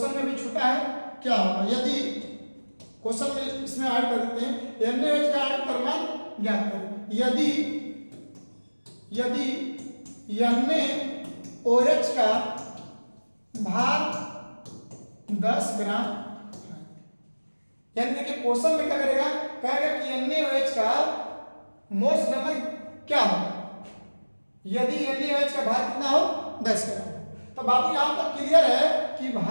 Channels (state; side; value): inverted; both; correlation -1.00